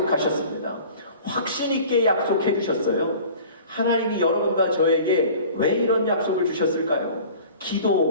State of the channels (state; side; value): inverted; both; correlation -0.44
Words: 확신 있게 약속해 주셨어요. 하나님이 여러분과 저에게 왜 이런 약속을 주셨을까요?